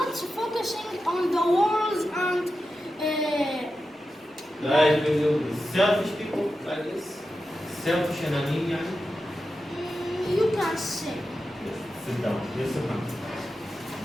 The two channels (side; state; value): both; normal; correlation 0.91